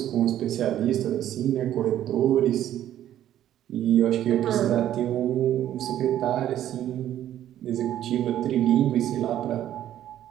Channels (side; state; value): left; quieter; 11.8 dB